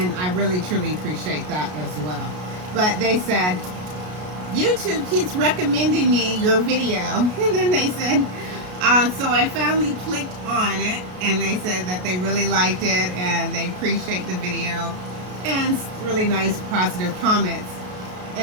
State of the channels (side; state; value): left; late; 33 ms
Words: I really truly appreciate that as well. But they said, YouTube keeps recommending me your video. And then they said, so I finally clicked on it, and they said that they really liked it and they appreciate the video, and really nice positive comments.